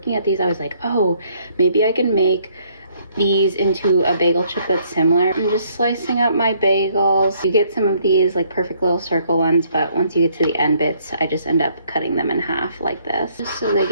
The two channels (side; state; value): both; inverted; correlation -0.66